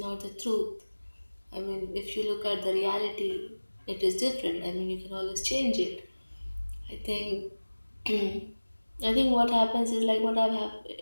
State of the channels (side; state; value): both; inverted; correlation -1.00